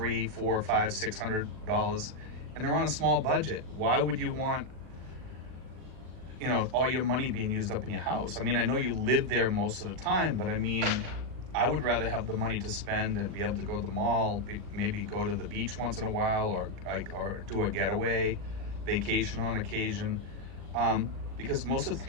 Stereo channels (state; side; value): late; left; 39 ms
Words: $400, $500, $600, and they're on a small budget. Why would you want all your money being used up in your house? I mean, I know you live there most of the time, but I mean, I would rather have the money to spend and be able to go to the mall, maybe go to the beach once in a while, or do a getaway vacation on occasion, because most of